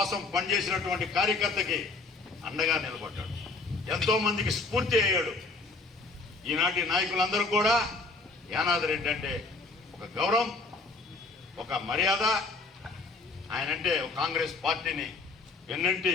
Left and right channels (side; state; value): right; quieter; 3.7 dB